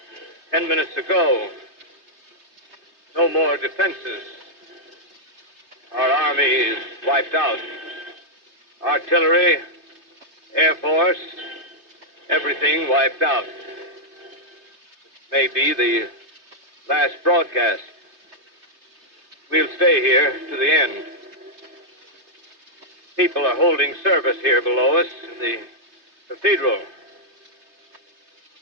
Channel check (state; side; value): late; left; 3.3 ms